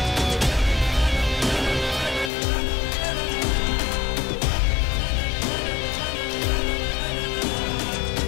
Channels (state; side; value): drops out; right; at 2.3 s